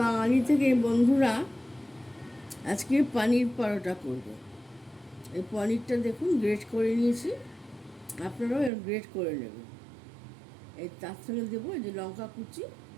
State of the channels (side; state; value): left; drops out; at 8.7 s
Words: বাঙালি থেকে বন্ধুরা আজকে পনির পরোটা করব। এই পনিরটা দেখুন গ্রেট করে নিয়েছি, আপনারাও গ্রেট করে নেবেন। এই তার সঙ্গে দেবো এই যে লঙ্কা কুচি,